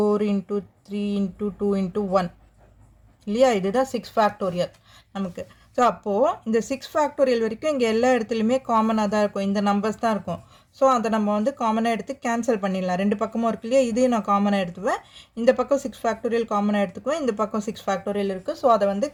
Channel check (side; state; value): both; identical; correlation 1.00